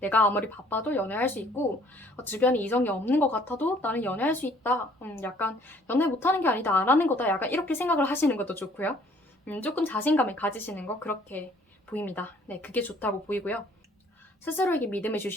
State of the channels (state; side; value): normal; both; correlation 0.59